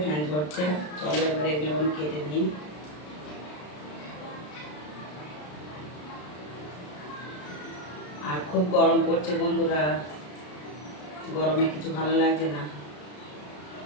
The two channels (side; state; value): right; late; 33 ms